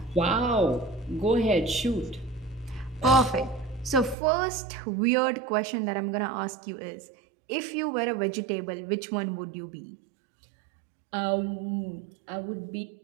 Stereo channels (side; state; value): left; drops out; at 4.2 s